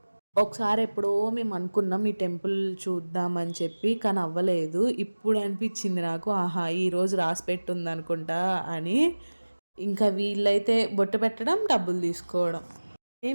ఒకసారి ఎప్పుడో మేము అనుకున్నాం ఈ టెంపుల్ చూద్దామని చెప్పి, కానీ అవ్వలేదు. ఇప్పుడు అనిపించింది నాకు, ఆహా ఈరోజు రాసి పెట్టుంది అనుకుంటా అని. ఇంకా వీళ్ళైతే బొట్టు పెట్టడం, డబ్బులు తీసుకోవడం.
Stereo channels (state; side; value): inverted; both; correlation -1.00